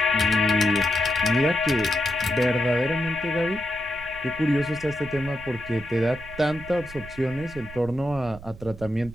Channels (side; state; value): right; noise; rumble, 16 dB below the sound